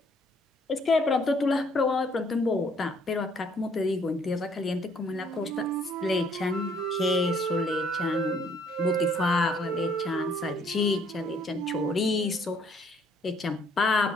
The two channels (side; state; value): both; normal; correlation 0.64